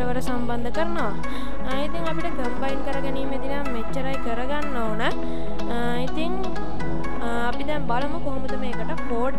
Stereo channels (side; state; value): both; identical; correlation 1.00